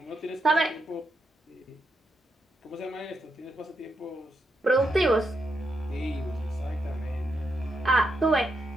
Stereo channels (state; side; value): normal; both; correlation 0.82